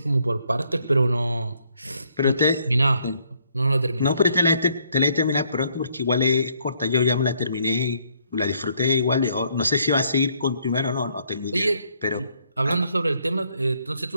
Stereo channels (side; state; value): both; inverted; correlation -0.69